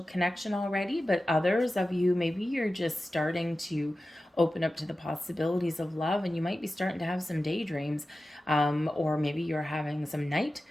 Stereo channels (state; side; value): normal; both; correlation 0.94